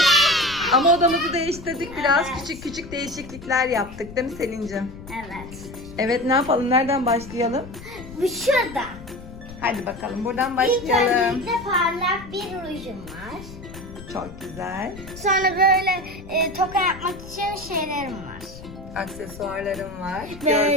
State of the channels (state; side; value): noise; left; rumble, 15 dB below the sound